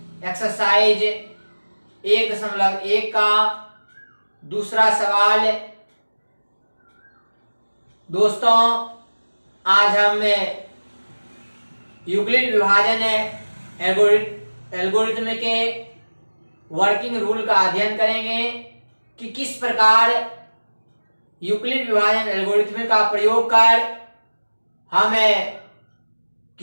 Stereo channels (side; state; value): both; inverted; correlation -1.00